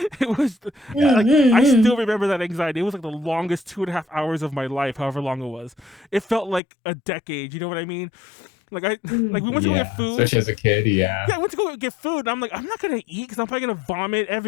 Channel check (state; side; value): drops out; right; at 6.6 s